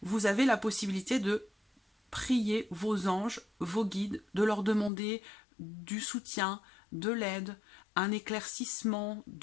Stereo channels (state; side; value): drops out; right; at 4.9 s